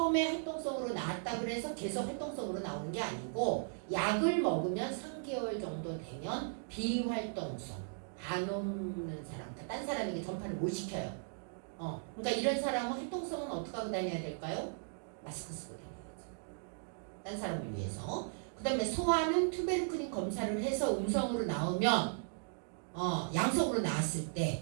활동성으로 나왔다 그래서 계속 활동성으로 나오는 게 아니고 약을 먹으면 3개월 정도 되면 비활동성, 안 없는 사람, 그러니까 딴 사람에게 전파를 못 시켜요. 그러니까 이런 사람은 활동성은 어떻게 하고 다녀야 될까요? 마스크 쓰고 다녀야죠. 딴 사람을 위해서. 그 다음에 소아는 투베르클린 검사를 해서 음성으로 나오면 양성으로 나왔을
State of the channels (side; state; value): left; silent; digital silence